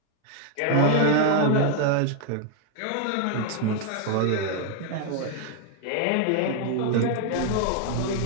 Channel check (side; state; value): both; different; correlation 0.00